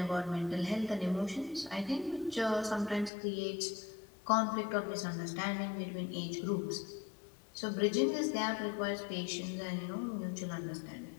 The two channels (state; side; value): drops out; right; at 3.1 s